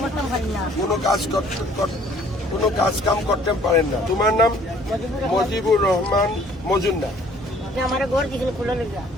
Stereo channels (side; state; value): both; normal; correlation 0.57